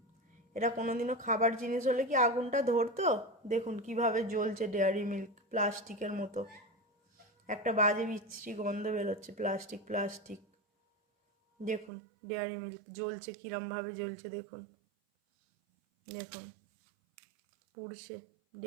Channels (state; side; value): drops out; left; at 11.9 s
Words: এটা কোনোদিনও খাবার জিনিস হলে কি আগুনটা ধরতো? দেখুন কিভাবে জ্বলছে ডেয়ারি মিল্ক, প্লাস্টিকের মতো। একটা বাজে বিচ্ছিরি গন্ধ বেরোচ্ছে, প্লাস্টিক প্লাস্টিক। দেখুন ডেয়ারি মিল্ক জ্বলছে, কিরমভাবে জ্বলছে দেখুন। দেখুন পুড়ছে